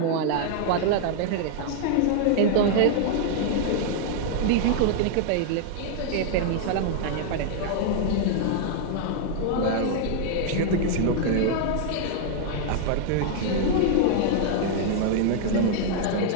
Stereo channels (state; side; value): different; both; correlation -0.01